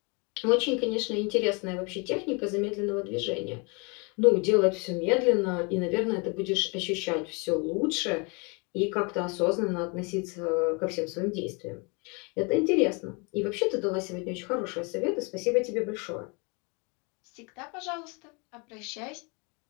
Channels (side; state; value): right; quieter; 31.5 dB